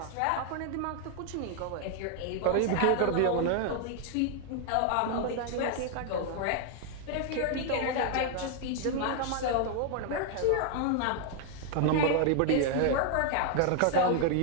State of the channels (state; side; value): different; both; correlation 0.00